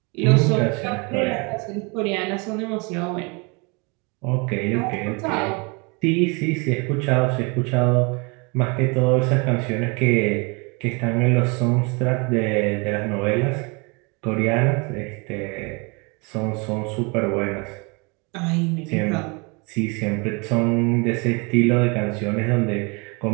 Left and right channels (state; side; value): quieter; left; 30.3 dB